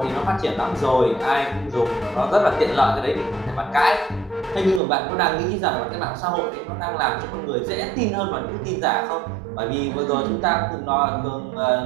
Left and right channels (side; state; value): left; drops out; at 4.8 s